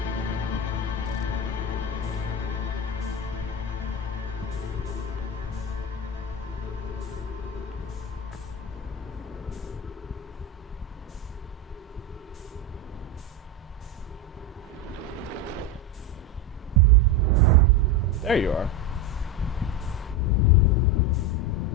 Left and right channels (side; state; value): both; normal; correlation 0.16